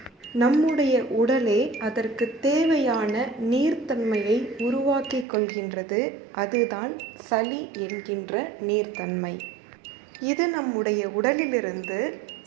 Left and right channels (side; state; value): left; drops out; at 5.2 s